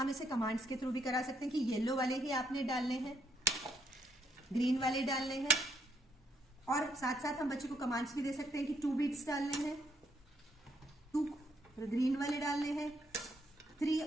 इसे कमांड्स के थ्रू भी करा सकते हैं कि येलो वाले ही आपने डालने हैं, ग्रीन वाले डालने हैं, और साथ साथ हम बच्चे को कमांड्स भी दे सकते हैं कि 2 बीट्स डालने हैं, 2 ग्रीन वाले डालने हैं, 3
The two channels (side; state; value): both; normal; correlation 0.73